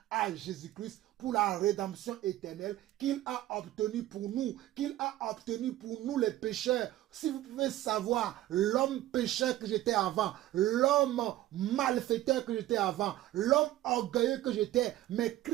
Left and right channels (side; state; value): left; quieter; 14.7 dB